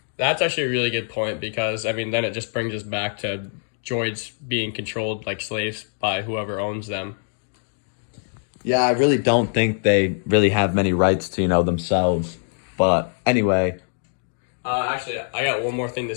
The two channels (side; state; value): right; silent; digital silence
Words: That's actually a really good point because, then it just brings us back to droids being controlled like slaves by whoever owns them. Yeah, I really don't think they really have many rights to, themselves. But anyway. Actually, I got one more thing to